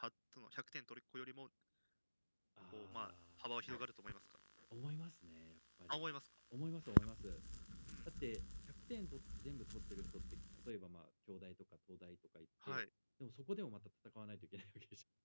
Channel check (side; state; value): both; inverted; correlation -1.00